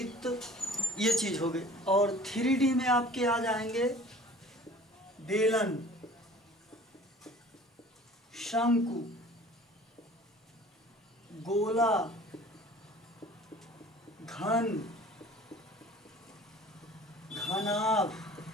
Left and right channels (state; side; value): normal; both; correlation 0.47